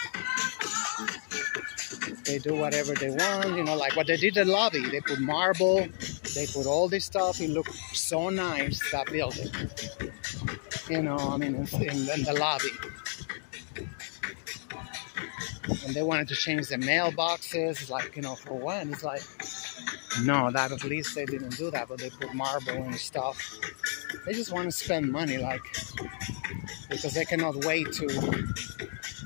They do whatever they want, you know, like what they did in the lobby. They put marble, they put all this stuff. It looked so nice, that building. You know, I mean, in the lobby. And they wanted to change the mailboxes. It's like, you know, for what? It's like, no, that at least they didn't do that, but they put marble and stuff. They just want to spend money, like, because they cannot wait to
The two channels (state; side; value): silent; right; digital silence